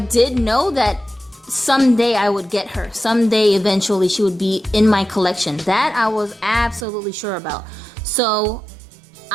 know that someday I would get her. Someday, eventually, she would be in my collection. That I was absolutely sure about. So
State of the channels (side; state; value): left; drops out; at 6.9 s